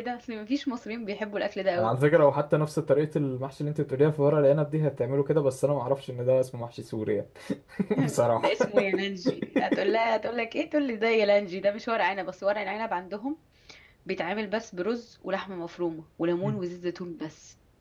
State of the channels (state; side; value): identical; both; correlation 1.00